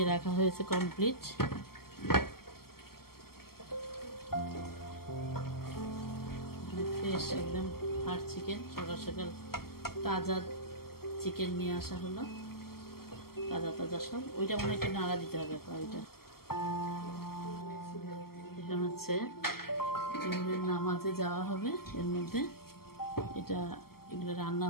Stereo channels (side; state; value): right; late; 0.94 ms